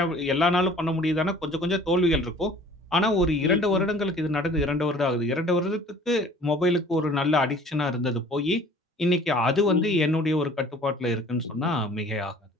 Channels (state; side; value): normal; both; correlation 0.49